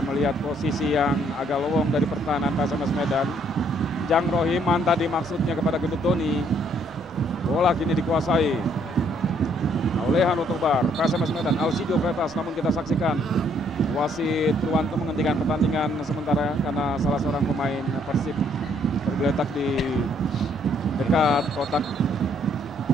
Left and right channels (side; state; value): both; normal; correlation 0.67